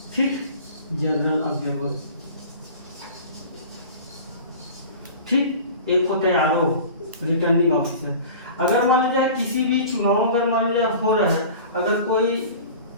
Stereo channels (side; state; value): both; inverted; correlation -0.39